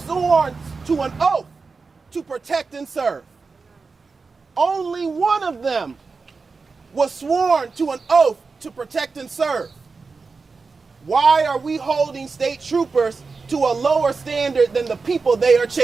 sworn to an oath to protect and serve. Only one of them was sworn to an oath to protect and serve. Why are we holding state troopers to a lower standard than the people they are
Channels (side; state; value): left; quieter; 4.5 dB